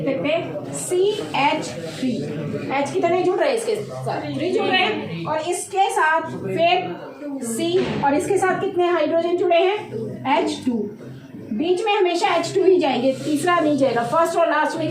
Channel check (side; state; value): both; identical; correlation 1.00